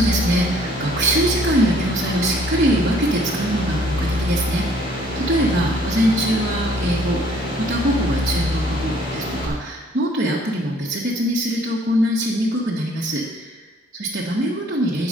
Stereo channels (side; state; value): both; normal; correlation 0.59